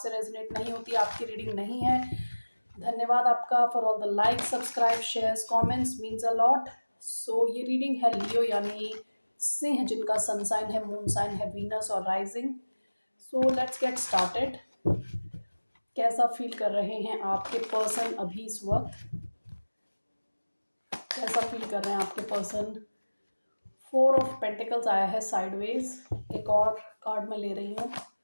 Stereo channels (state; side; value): inverted; both; correlation -1.00